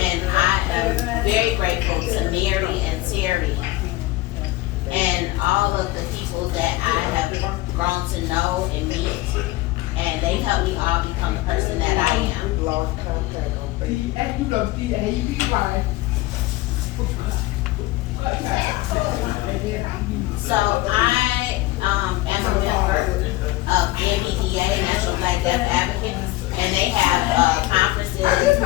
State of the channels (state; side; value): quieter; right; 18.5 dB